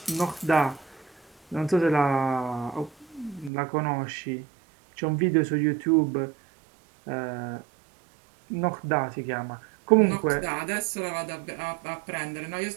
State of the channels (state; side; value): drops out; left; at 3.5 s